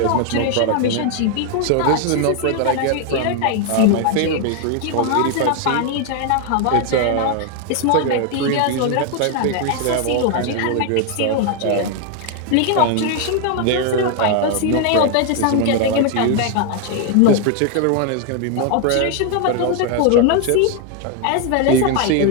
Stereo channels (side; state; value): both; different; correlation 0.01